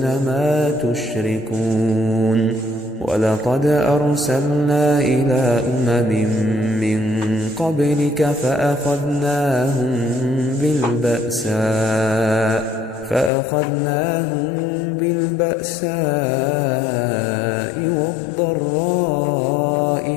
ما تشركون ولقد أرسلنا إلى من قبلك فأخذناهم بالبأساء والضراء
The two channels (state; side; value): drops out; right; at 13.3 s